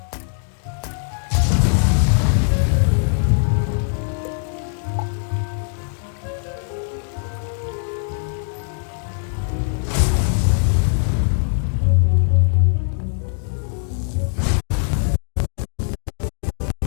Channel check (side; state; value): right; silent; digital silence